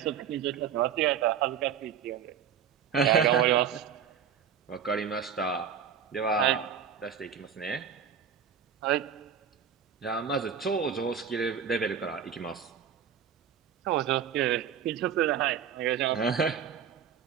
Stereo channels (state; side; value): quieter; left; 7.9 dB